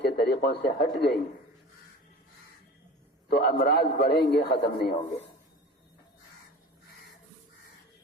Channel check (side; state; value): both; normal; correlation 0.38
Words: کے طریقوں سے ہٹ گئی تو امراض بڑھیں گے، ختم نہیں ہوں گے.